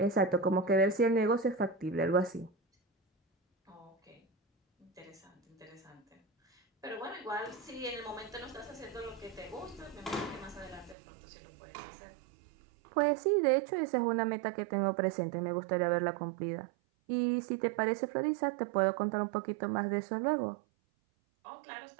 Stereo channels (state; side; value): drops out; left; at 11.0 s